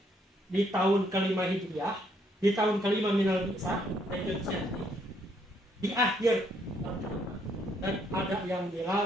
di tahun kelima Hijriah, di tahun kelima minal bi'tsah, di akhir, dan ada yang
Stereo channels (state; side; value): normal; both; correlation 0.70